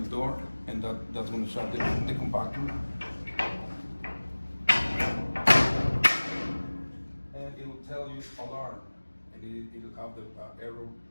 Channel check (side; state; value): both; inverted; correlation -1.00